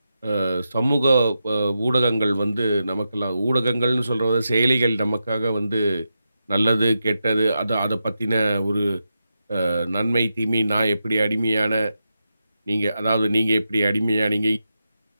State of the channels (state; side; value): inverted; both; correlation -0.88